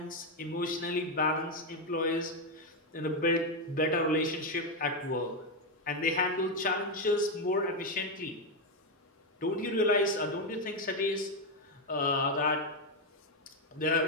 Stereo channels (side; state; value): both; normal; correlation 0.05